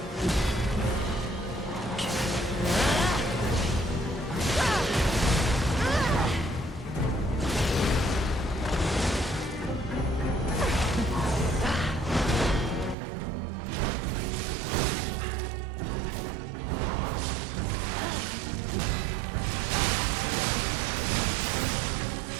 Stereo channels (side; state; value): left; drops out; at 13.0 s